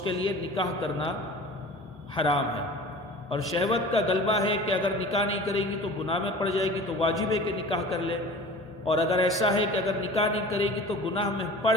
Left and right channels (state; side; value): normal; both; correlation 0.40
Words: کے لیے نکاح کرنا حرام ہے۔ اور شہوت کا غلبہ ہے کہ اگر نکاح نہیں کرے گی تو گناہ میں پڑ جائے گی، تو واجب ہے کہ نکاح کر لے، اور اگر ایسا ہے کہ اگر نکاح نہیں کرے گی تو گناہ میں پڑ